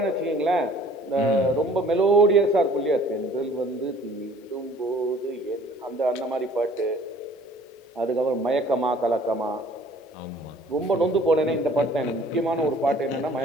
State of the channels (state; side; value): normal; both; correlation 0.54